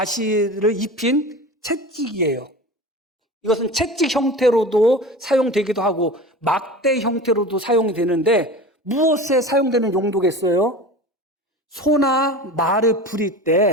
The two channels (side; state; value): both; normal; correlation 0.33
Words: 입힌 채찍이에요. 이것은 채찍 형태로도 사용되기도 하고 막대 형태로도 사용이 되는데, 무엇에 사용되는 용도겠어요? 소나 말을 부릴